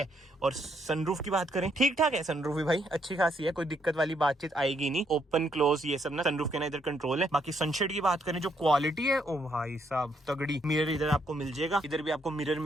और सनरूफ की बात करें, ठीक ठाक है सनरूफ भी भाई, अच्छी खासी है, कोई दिक्कत वाली बातचीत आएगी नहीं। ओपन क्लोज ये सब ना सनरूफ के ना इधर कंट्रोल है। बाकी सनशेड की बात करें, जो क्वालिटी है ओ भाई साहब तगड़ी। मिरर इधर आपको मिल जाएगा, इधर भी आपको मिरर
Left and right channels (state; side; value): normal; both; correlation 0.73